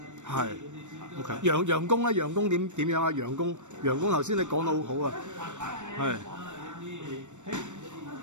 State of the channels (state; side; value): late; left; 0.84 ms